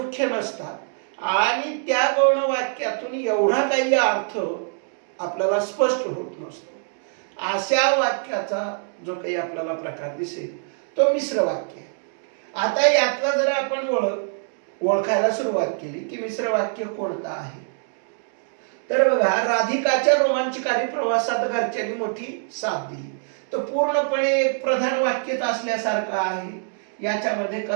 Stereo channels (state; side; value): silent; left; 63 dB below the other